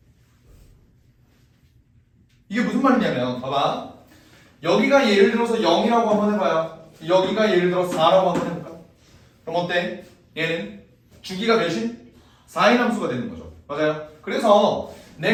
이게 무슨 말이냐면 봐봐. 여기가 예를 들어서 0이라고 한번 해봐요. 여기가 예를 들어 4라고 한번 해볼까? 그럼 어때? 얘는 주기가 몇인? 4인 함수가 되는 거죠. 맞아요? 그래서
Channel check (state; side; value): identical; both; correlation 1.00